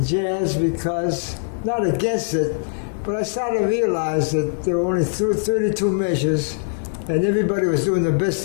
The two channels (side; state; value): right; silent; digital silence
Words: jazz because, not against it, but I started to realize that there were only 32 measures, and everybody was doing the best